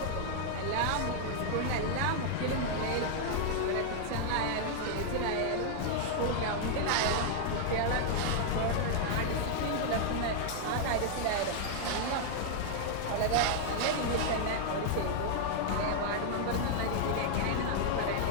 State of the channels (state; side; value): different; both; correlation 0.00